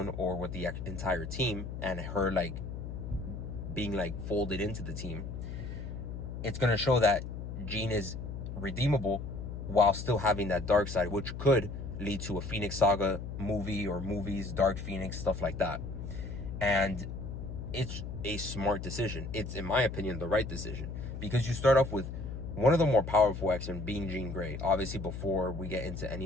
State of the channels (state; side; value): noise; left; hum, 7 dB below the sound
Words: or with the entire team and her like being like folded into the team, it's going to show that Jean is redeemable while still having that dark side, which could lead to a Phoenix Saga movie or movies, Dark Phoenix, stuff like that. And it's a smart decision. It's, in my opinion, the right decision, because you start off with one of the more powerful X-Men being Jean Grey. Obviously, before we get into